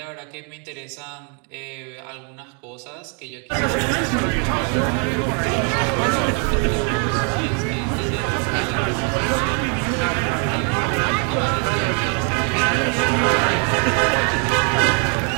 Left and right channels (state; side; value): quieter; left; 38.1 dB